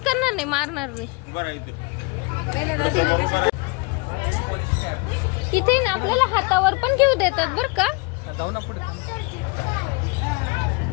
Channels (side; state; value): right; quieter; 28.2 dB